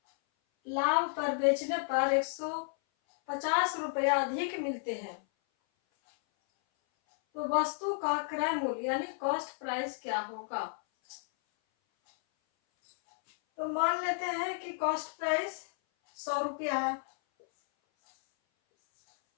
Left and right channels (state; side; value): silent; right; 56 dB below the other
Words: लाभ पर बेचने पर 150 रुपया अधिक मिलते हैं, तो वस्तु का क्रय मूल्य यानी कॉस्ट प्राइस क्या होगा। तो मान लेते हैं कि कॉस्ट प्राइस 100 रुपया है,